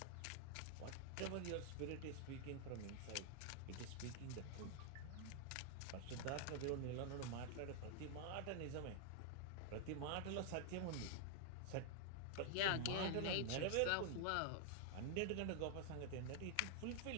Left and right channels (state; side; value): different; both; correlation 0.00